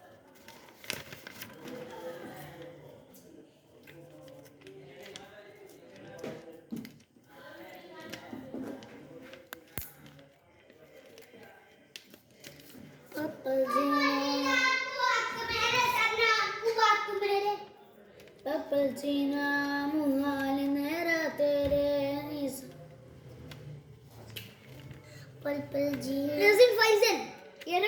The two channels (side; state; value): both; identical; correlation 1.00